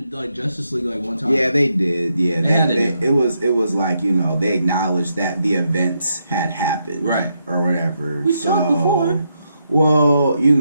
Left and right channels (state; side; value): inverted; both; correlation -0.80